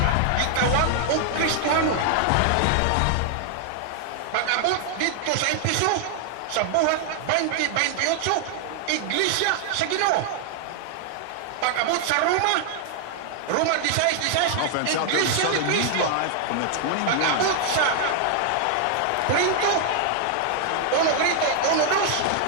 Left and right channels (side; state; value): both; different; correlation 0.00